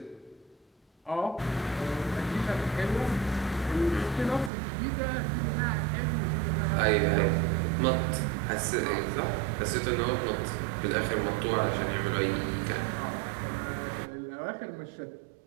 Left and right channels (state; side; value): drops out; left; at 4.5 s